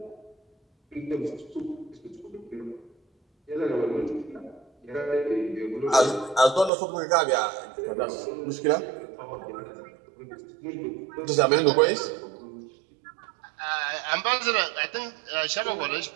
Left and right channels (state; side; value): drops out; left; at 6.7 s